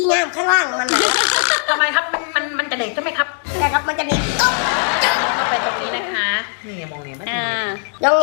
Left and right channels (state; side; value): silent; right; 59 dB below the other